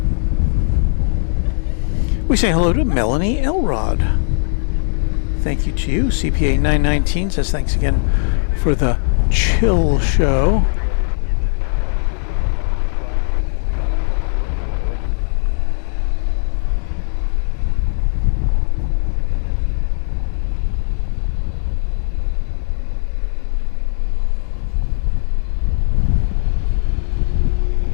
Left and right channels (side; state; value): right; silent; 64 dB below the other